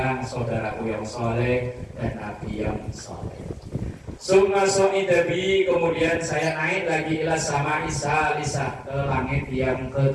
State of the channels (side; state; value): both; identical; correlation 1.00